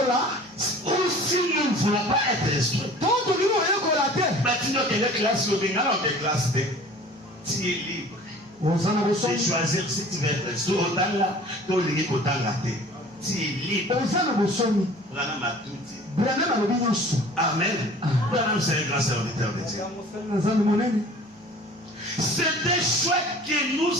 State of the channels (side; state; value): both; normal; correlation 0.46